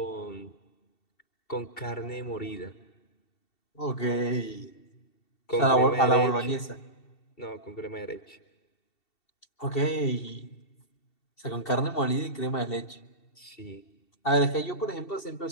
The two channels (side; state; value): right; late; 2.7 ms